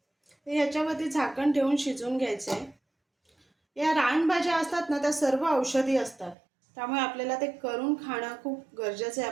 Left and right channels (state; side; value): drops out; left; at 6.4 s